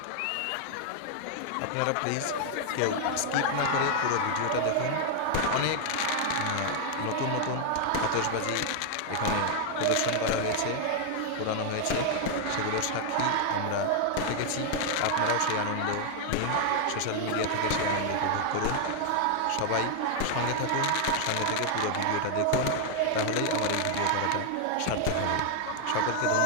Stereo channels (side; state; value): both; different; correlation 0.00